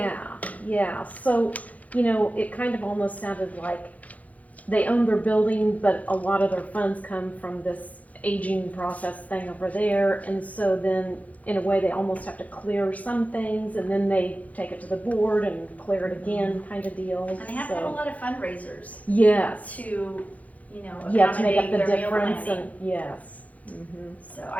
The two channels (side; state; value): right; late; 0.072 ms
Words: yeah. So, it kind of almost sounded like they own their building, but a lot of their funds come from this aging process thing over there. And so then, in a way, they almost have to clear some things, and then they take it to the board and clear it again, kind of deal. And they have to have a lot of fundraisers Yes. to, Yeah, to make up accommodate the their meal difference, planning. and yes. Mm-hmm. So